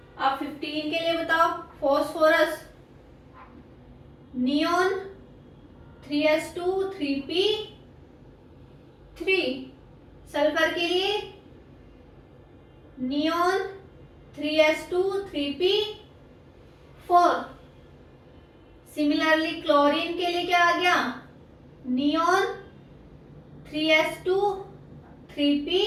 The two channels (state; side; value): identical; both; correlation 1.00